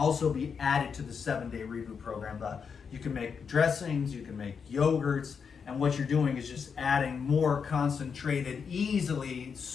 be added to the 7-day reboot program. You can make dressings, you can make yogurts, and what you're doing is just adding more concentrated,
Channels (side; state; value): right; quieter; 6.2 dB